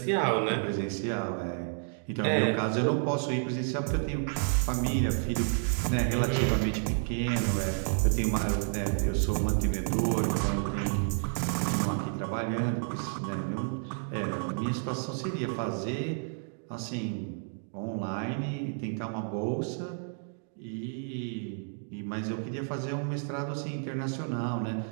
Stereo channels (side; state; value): left; silent; 57 dB below the other